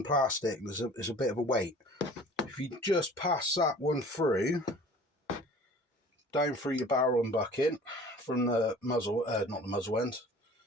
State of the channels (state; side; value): normal; both; correlation 0.46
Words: plastic, there's a bit of a weight. If you just pass that one through, down through your barrel and bucket, from the muzzle, not the muzzle end,